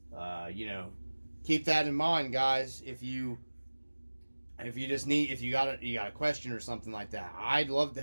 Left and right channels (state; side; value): inverted; both; correlation -1.00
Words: you know, keep that in mind, guys. If you got a question or something like that, I'd love to